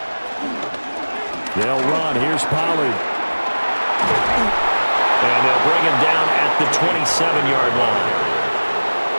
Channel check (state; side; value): inverted; both; correlation -1.00